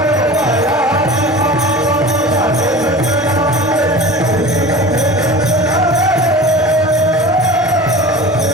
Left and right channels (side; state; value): both; normal; correlation 0.36